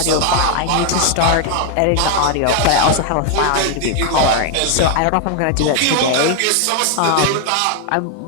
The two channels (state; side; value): different; both; correlation 0.00